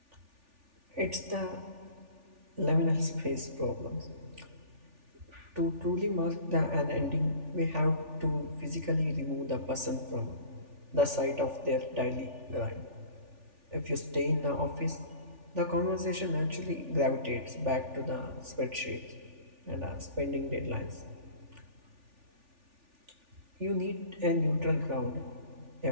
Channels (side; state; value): left; late; 3.4 ms